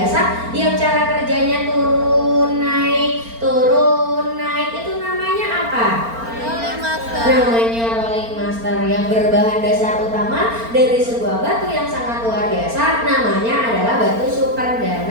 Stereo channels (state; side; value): late; left; 4.4 ms